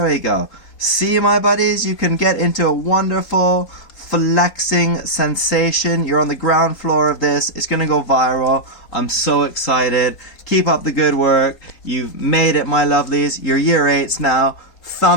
we go. See, my buddies, you can get into a wonderful flexing sensation. You're on the ground floor of this. It's going to go viral. I'm so excited. Keep up the good work. You've made it, my lovelies. You're year 8s now.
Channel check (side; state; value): right; late; 4.2 ms